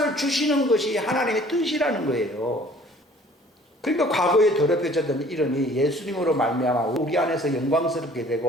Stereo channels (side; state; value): both; normal; correlation 0.53